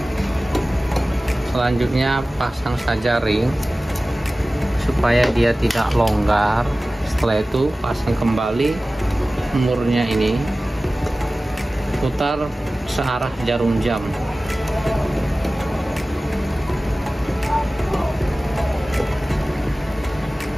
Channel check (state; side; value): normal; both; correlation 0.97